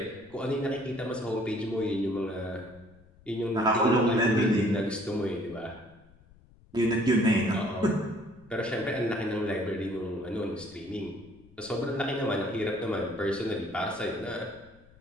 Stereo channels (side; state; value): left; noise; rumble, 26 dB below the sound